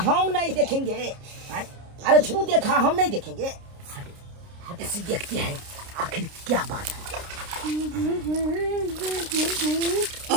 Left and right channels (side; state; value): left; late; 29 ms